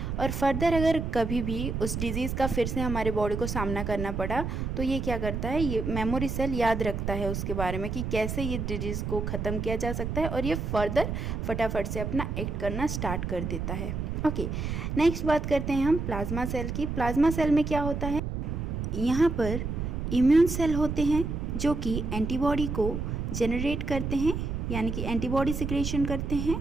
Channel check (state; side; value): noise; right; rumble, 3 dB below the sound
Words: और फर्दर अगर कभी भी उस डिज़ीज़ का फिर से हमारे बॉडी को सामना करना पड़ा तो ये क्या करता है, ये मेमोरी सेल याद रखता है उसके बारे में कि कैसे ये डिजीज़ को ख़त्म किया जा सकता है, और ये फर्दर फटाफट से अपना एक्ट करना स्टार्ट कर देता है. ओके, नेक्स्ट बात करते हैं हम प्लाज्मा सेल की. प्लाज्मा सेल में क्या होता है, यहाँ पर इम्यून सेल होते हैं जो कि एंटीबॉडी को जनरेट करते हैं, यानी कि एंटीबॉडी सिक्रेशन करते हैं,